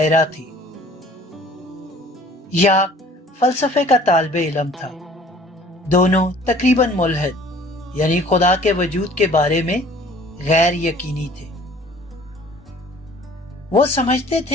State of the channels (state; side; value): normal; both; correlation 0.51